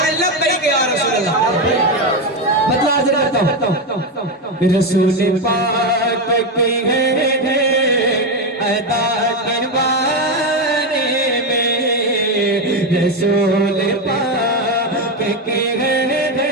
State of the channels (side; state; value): both; normal; correlation 0.10